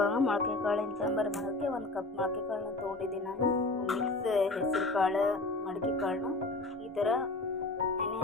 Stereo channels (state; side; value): quieter; right; 3.0 dB